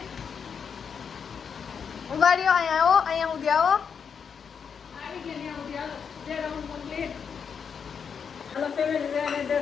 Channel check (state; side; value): quieter; right; 6.7 dB